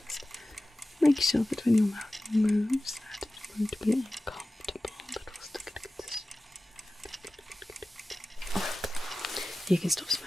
just make sure that when your mouth moves, that it won't be uncomfortable, but we'll still get a good You can stop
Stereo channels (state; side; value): normal; both; correlation 0.96